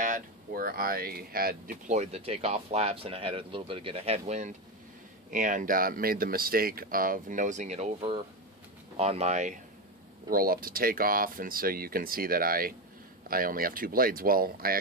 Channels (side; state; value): both; normal; correlation 0.13